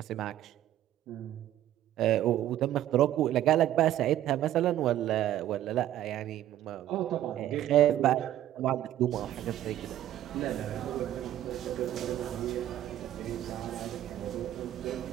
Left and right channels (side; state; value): left; quieter; 12.6 dB